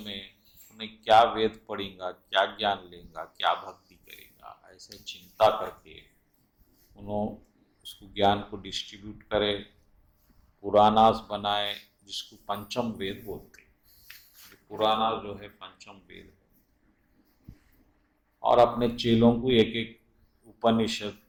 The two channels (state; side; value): identical; both; correlation 1.00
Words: उसने क्या वेद पढ़ेगा, क्या ज्ञान लेगा, क्या भक्ति करेगा, ऐसे चिंता करके उन्होंने उसको ज्ञान को डिस्ट्रीब्यूट करे, पुराणास बनाए जिसको पंचम वेद बोलते हैं। पुराना जो है पंचम वेद है, और अपने चेलों को एक एक उपनिषद